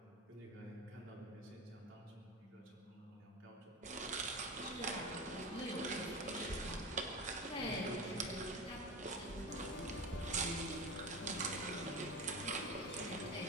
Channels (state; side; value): normal; both; correlation 0.26